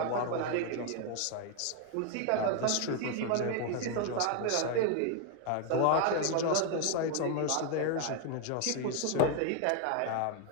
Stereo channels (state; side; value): different; both; correlation 0.01